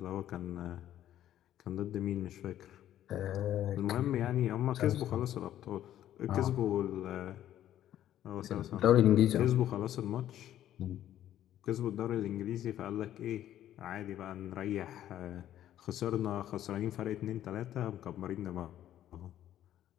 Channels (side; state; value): right; quieter; 11.9 dB